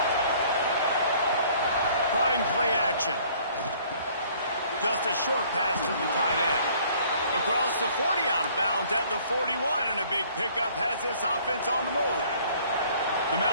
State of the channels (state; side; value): inverted; both; correlation -0.57